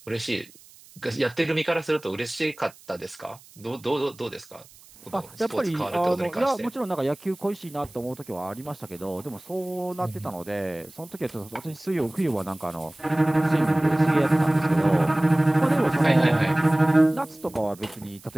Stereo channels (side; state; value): right; noise; hiss, 24 dB below the sound